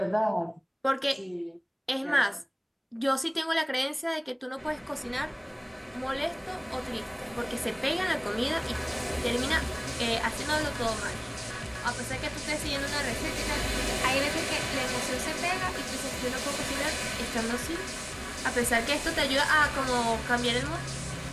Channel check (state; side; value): identical; both; correlation 1.00